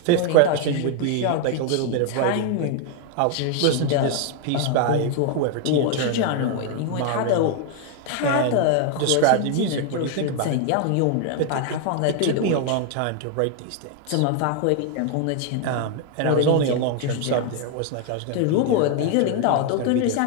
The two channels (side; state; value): both; different; correlation 0.01